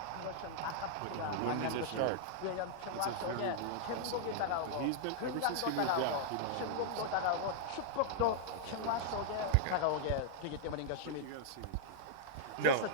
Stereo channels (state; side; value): different; both; correlation -0.01